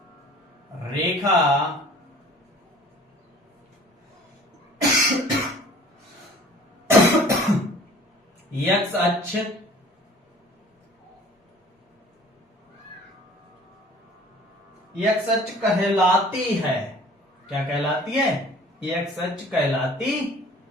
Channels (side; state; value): both; normal; correlation 0.49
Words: रेखा एक्स अक्ष एक्स अक्ष कहलाती है। क्या कहलाती है? एक्स अक्ष कहलाती